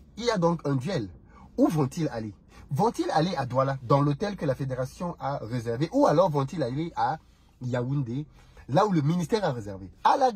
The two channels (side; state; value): both; identical; correlation 1.00